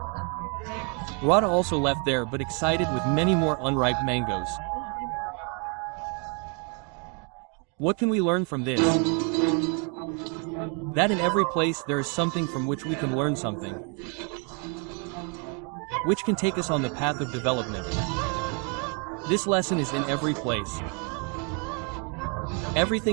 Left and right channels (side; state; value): left; quieter; 35.6 dB